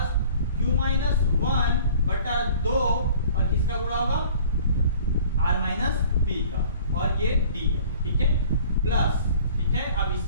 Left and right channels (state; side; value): inverted; both; correlation -0.49